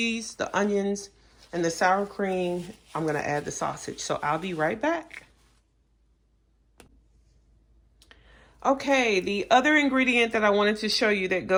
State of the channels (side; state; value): both; identical; correlation 1.00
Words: the onions, and the sour cream, I'm going to add the sausage. So I'll be right back. Okay, the other ingredient that I wanted to show you that